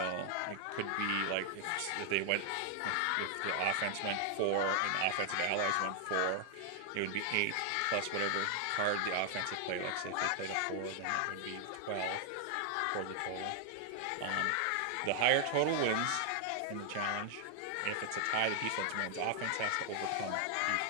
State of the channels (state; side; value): different; both; correlation 0.00